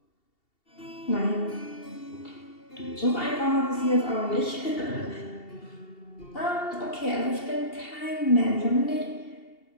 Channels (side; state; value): right; late; 2.7 ms